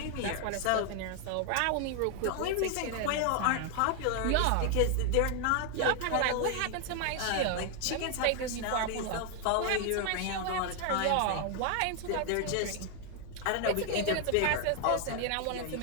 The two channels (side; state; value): both; different; correlation 0.00